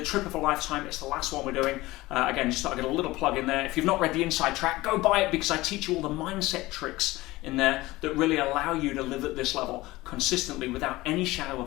trip of a lifetime. It's the last one we're doing. Again, just thought I'd get a little plug in there. If you've not read the Inside Track, go buy it, because I teach you all the mindset tricks in there that really allow you to live at this level consistently without any shadow of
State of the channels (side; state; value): right; quieter; 19.2 dB